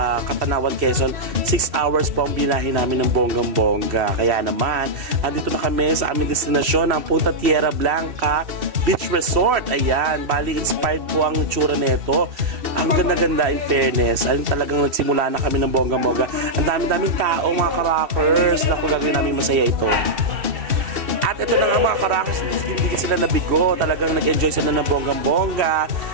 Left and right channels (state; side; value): late; left; 2.7 ms